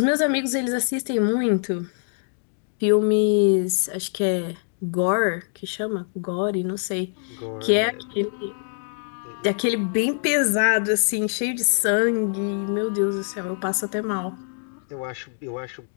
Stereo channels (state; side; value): silent; right; 63 dB below the other